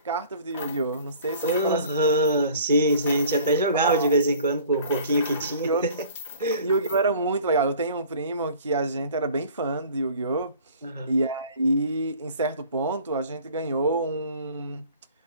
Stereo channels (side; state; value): both; inverted; correlation -0.49